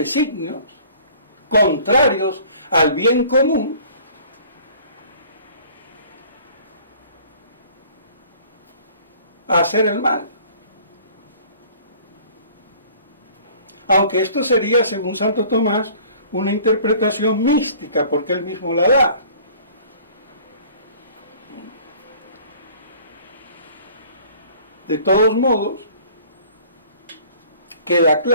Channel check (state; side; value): inverted; both; correlation -0.51